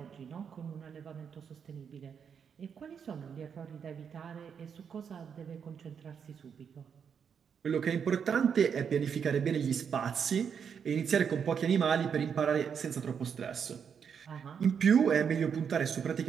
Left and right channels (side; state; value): left; quieter; 7.1 dB